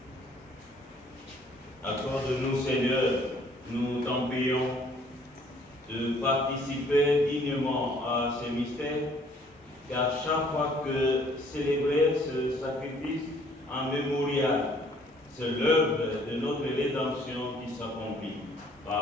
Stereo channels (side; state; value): both; normal; correlation 0.60